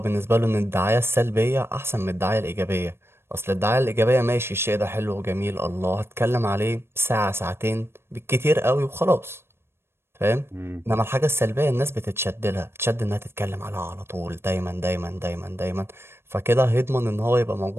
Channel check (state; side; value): late; left; 0.12 ms